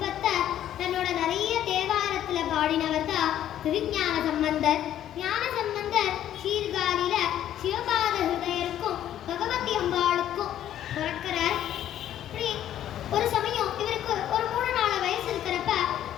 தன்னோட நிறைய தேவாரத்துல பாடினவர் தான் திருஞான சம்பந்தர். ஞான சம்பந்தர் சீர்காழியில சிவபாத ஹிருதயருக்கும் பகவதி அம்பாளுக்கும் பிறக்கிறார். இப்படி ஒரு சமயம் இவருக்கு ஒரு 3-4 வயசு இருக்கிறப்ப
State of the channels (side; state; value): right; quieter; 11.4 dB